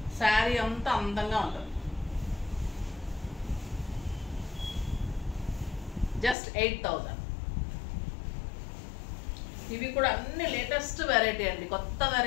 శారీ అంతా అందంగా ఉంటుంది. జస్ట్ 8,000. ఇవి కూడా అన్ని లేటెస్ట్ వెరైటీ అండి, కొత్త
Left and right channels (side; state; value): right; drops out; at 6.4 s